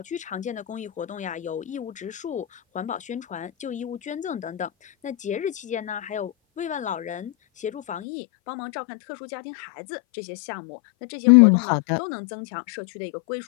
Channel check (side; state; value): right; drops out; at 8.1 s